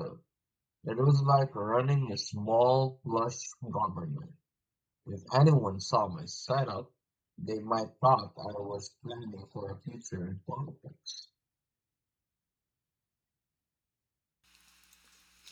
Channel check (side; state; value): both; identical; correlation 1.00